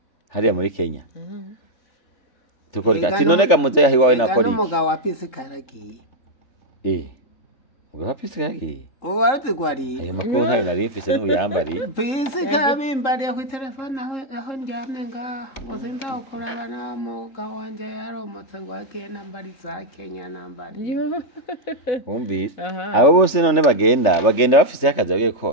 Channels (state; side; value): late; right; 3.4 ms